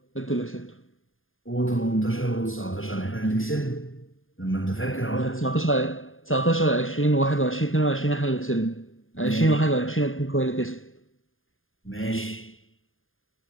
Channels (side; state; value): right; late; 0.59 ms